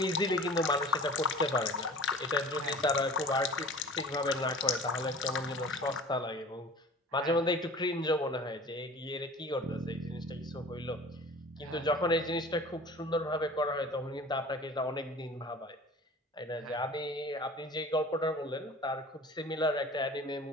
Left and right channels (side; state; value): both; normal; correlation 0.43